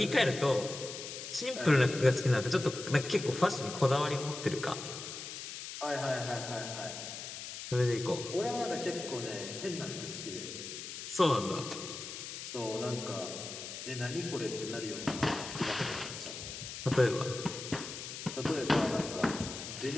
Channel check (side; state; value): left; noise; hiss, 9 dB below the sound